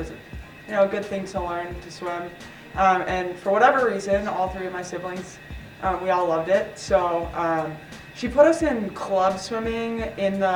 a good thing to learn to swim. And for whatever reason, all three of my siblings, we all loved it. So she put us in club swimming in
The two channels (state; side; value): identical; both; correlation 1.00